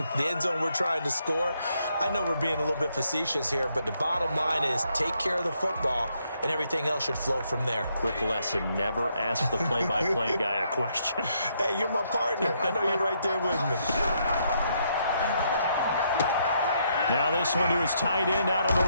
The end zone we're trying to score. I know we're being a little bit facetious here, but the bottom line is take care of the football, and everything else should flow from there. Quick lesson, never ask the play-by-play guy a question. Hey, you're my partner. I know you're right there with me. Now this one to his tight end out on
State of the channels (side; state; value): both; inverted; correlation -0.75